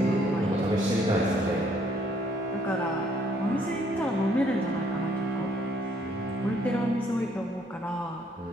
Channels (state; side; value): normal; both; correlation 0.66